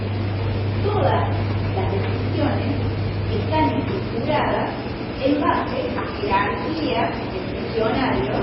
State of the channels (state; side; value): identical; both; correlation 1.00